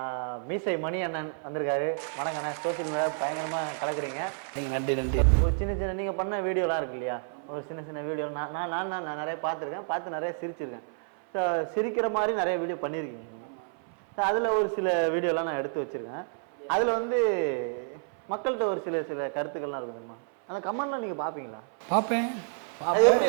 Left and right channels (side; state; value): left; silent; 58 dB below the other